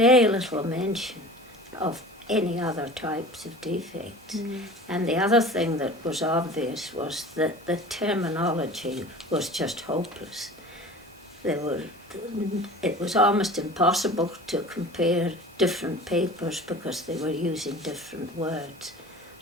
little mention of any other types of defects. And the other thing that was obvious was that the terminology was just hopeless. It was almost impossible to compare different papers because they were using different words.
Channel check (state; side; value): normal; both; correlation 0.40